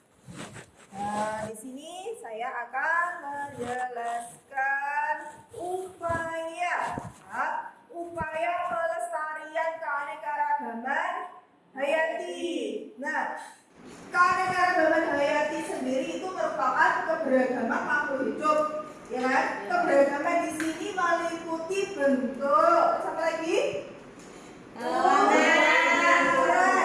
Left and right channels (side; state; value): both; identical; correlation 1.00